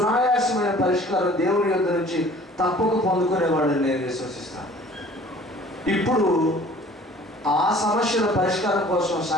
పరిష్కారం దేవుని యొద్ద నుంచి తప్పక పొందుకునేవాడని నేను విశ్వసిస్తాను. ఇప్పుడు ఆ సమస్యల పరిష్కారం కోసం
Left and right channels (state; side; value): normal; both; correlation 0.50